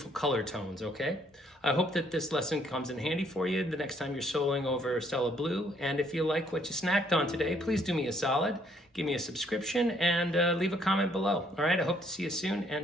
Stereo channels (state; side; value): normal; both; correlation 0.67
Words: color tones, okay? I hope that this lesson comes in handy for you the next time you're soloing over Stella Blue. And if you like what you snacked on today, please do me a solid, give me a subscription, and leave a comment below. All right, I hope to see you soon,